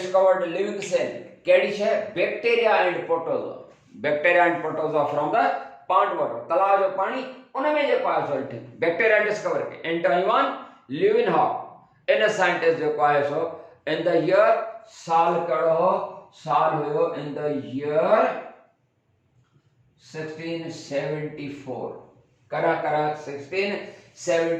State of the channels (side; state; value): both; identical; correlation 1.00